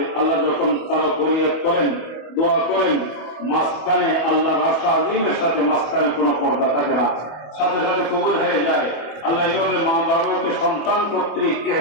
আল্লাহ যখন তারা ফরিয়াদ করেন দোয়া করেন মাঝখানে আল্লাহর আশা আজিমের সাথে মাঝখানে কোনো পর্দা থাকে না সাথে সাথে কবুল হয়ে যায় আল্লাহ এইভাবে মা বাবাকে সন্তান কর্তৃক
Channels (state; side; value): late; right; 25 ms